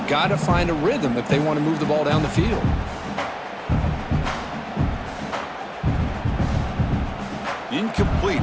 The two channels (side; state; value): both; identical; correlation 1.00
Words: got to find a rhythm if they want to move the ball down the field. Incomplete,